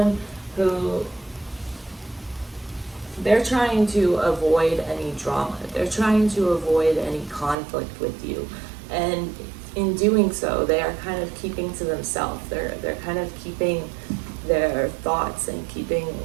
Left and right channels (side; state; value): left; drops out; at 7.6 s